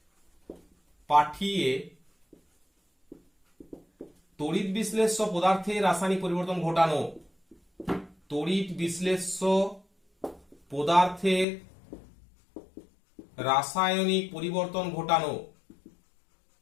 পাঠিয়ে তড়িৎ বিশ্লেষ্য পদার্থের রাসায়নিক পরিবর্তন ঘটানো, তড়িৎ বিশ্লেষ্য পদার্থের রাসায়নিক পরিবর্তন ঘটানো,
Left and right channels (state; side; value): drops out; right; at 11.5 s